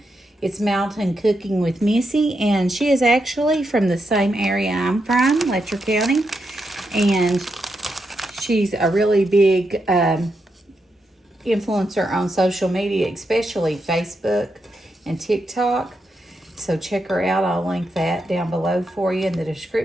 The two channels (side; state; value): both; normal; correlation 0.84